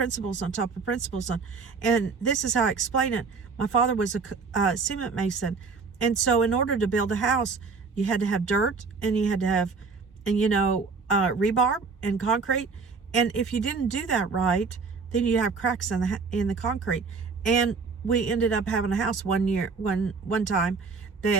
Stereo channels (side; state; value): left; quieter; 4.8 dB